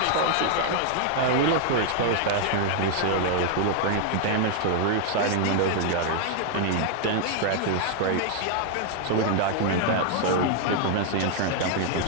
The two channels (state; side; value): different; both; correlation 0.00